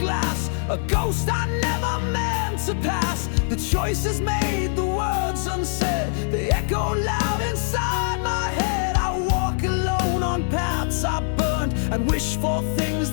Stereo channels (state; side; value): silent; right; 63 dB below the other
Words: a ghost I never meant to pass. The choices made, the words unsaid, they echo loud inside my head. I walk alone on paths I burned and wish for things